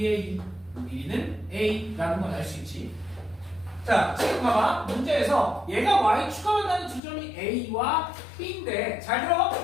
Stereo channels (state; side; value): drops out; right; at 7.0 s